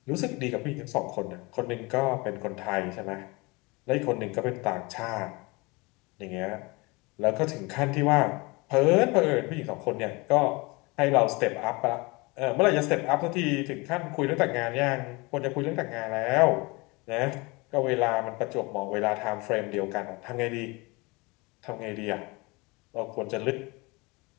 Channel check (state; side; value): quieter; right; 25.7 dB